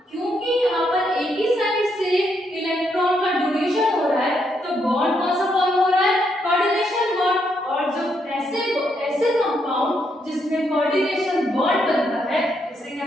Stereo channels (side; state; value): both; normal; correlation 0.77